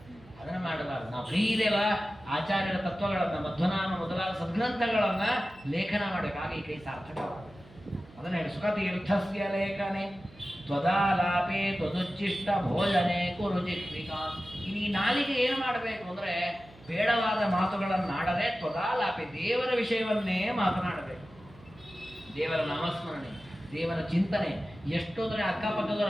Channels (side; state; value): right; noise; hum, 23 dB below the sound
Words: ಅದನ್ನ ಮಾಡಬಾರ್ದು. ನಾವು ಫ್ರೀ ಇದೆಯಲ್ಲ, ಆಚಾರ್ಯರ ತತ್ವಗಳನ್ನ, ಮಧ್ವನಾಮ ಮೊದಲಾದ ಸದ್ಗ್ರಂಥಗಳನ್ನ ಲೇಖನ ಮಾಡಬೇಕು. ಹಾಗೆ ಈ ಕೈ ಸಾರ್ಥಕವಾಗುತ್ತೆ. ಅದನ್ನ ಹೇಳಿ, ಸುಖ ತೀರ್ಥಸ್ಯ ಲೇಖನೆ ತ್ವದಾಲಾಪೆ ತ್ವದುಚ್ಚಿಷ್ಟ ಭೋಜನೆ ಕುರು ಜಿಹ್ವಿಕಾ. ಇನ್ನು ಈ ನಾಲಿಗೆ ಏನು ಮಾಡಬೇಕು ಅಂದ್ರೆ ಬೇಡವಾದ ಮಾತುಗಳನ್ನು ಆಡದೆ ತ್ವದಾಲಾಪೆ, ದೇವರ ವಿಷಯವನ್ನೇ ಮಾತನಾಡಬೇಕು. ದೇವರ ನಾಮಸ್ಮರಣೆ, ದೇವರ ಚಿಂತನೆ. ಎಷ್ಟು ಅಂದ್ರೆ ಅಕ್ಕಪಕ್ಕದವ್ರು